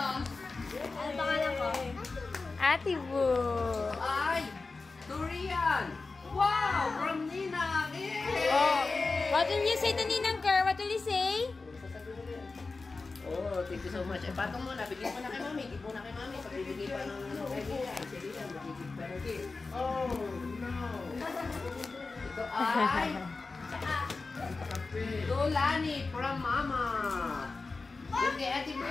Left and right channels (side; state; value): right; quieter; 3.9 dB